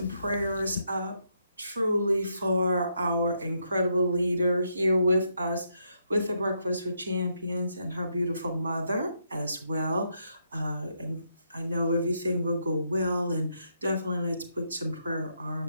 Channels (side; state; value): both; inverted; correlation -0.79